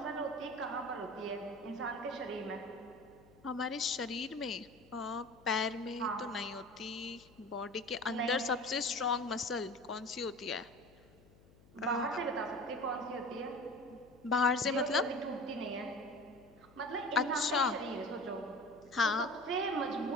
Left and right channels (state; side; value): noise; left; hum, 26 dB below the sound